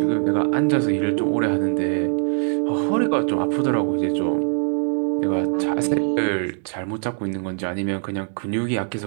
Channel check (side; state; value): left; silent; digital silence